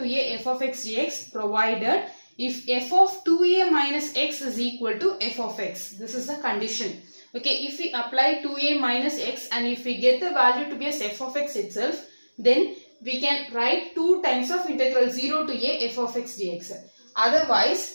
a f of x dx provided if f of 2a minus x is equal to f of x. This is the condition. Okay, if we apply 2a minus x and if we get the value to be as f of x itself, then we can write 2 times of integral 0 to a f of x dx.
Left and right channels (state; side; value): inverted; both; correlation -1.00